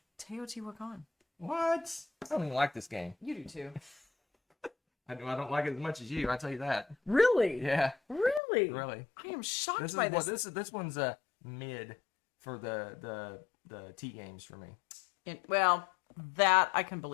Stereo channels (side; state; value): right; drops out; at 8.4 s